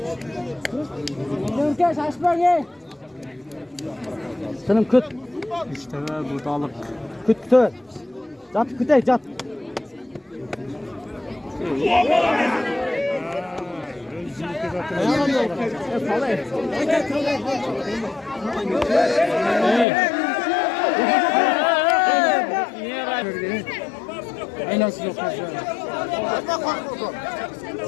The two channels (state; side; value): drops out; right; at 19.9 s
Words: Dönkeş açma ye. Senin küt. İşte burada alıp. Küt. Jat küte jat. Aynası yok.